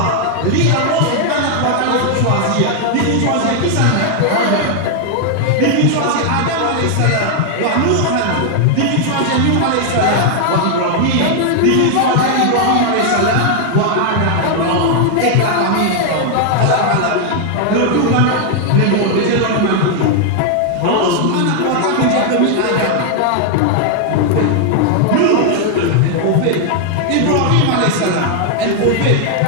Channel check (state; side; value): different; both; correlation 0.00